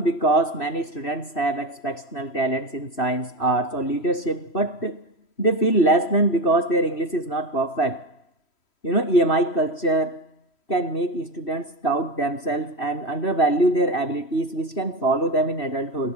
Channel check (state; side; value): late; right; 3.1 ms